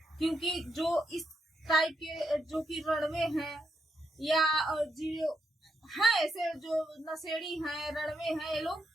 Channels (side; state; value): both; normal; correlation 0.80